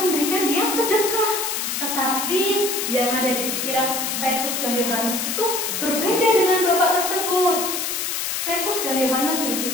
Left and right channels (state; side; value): noise; left; hiss, 2 dB below the sound